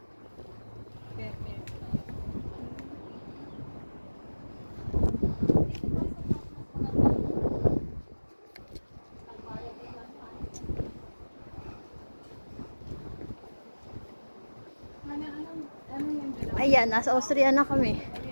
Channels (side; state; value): both; inverted; correlation -1.00